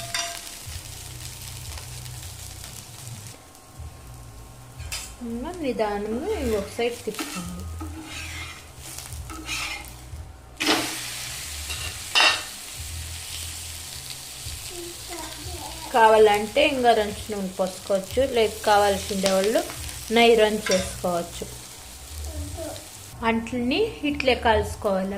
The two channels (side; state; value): both; identical; correlation 1.00